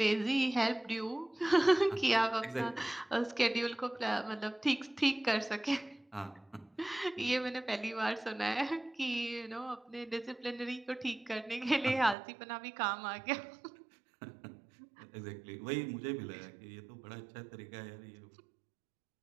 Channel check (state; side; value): drops out; left; at 12.2 s